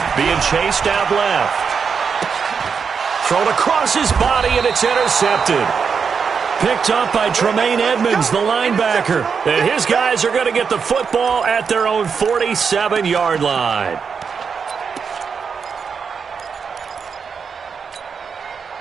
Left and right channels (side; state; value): left; quieter; 6.0 dB